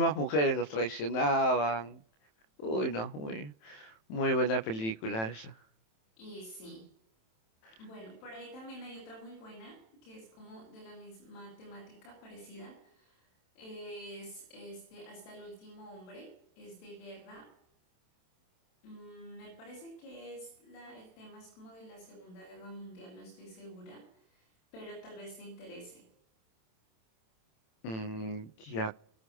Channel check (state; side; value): late; right; 27 ms